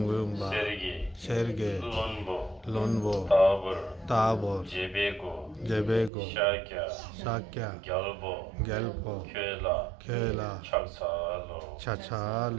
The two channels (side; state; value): left; drops out; at 6.1 s